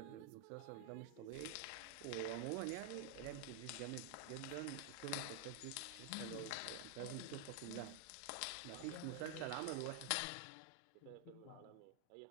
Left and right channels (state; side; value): different; both; correlation 0.00